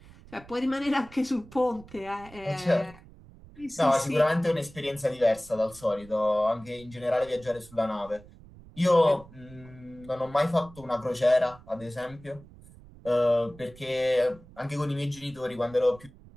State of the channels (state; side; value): noise; right; rumble, 21 dB below the sound